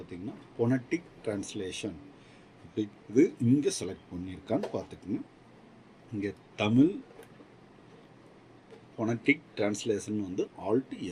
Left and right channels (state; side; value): identical; both; correlation 1.00